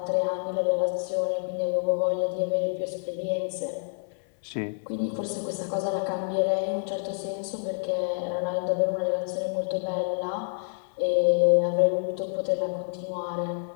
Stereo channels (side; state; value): right; silent; 60 dB below the other